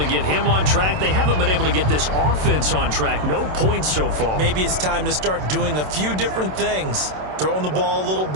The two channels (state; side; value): late; left; 27 ms